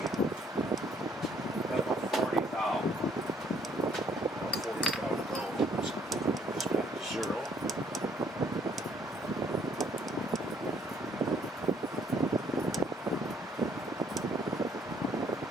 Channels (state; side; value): normal; both; correlation 0.64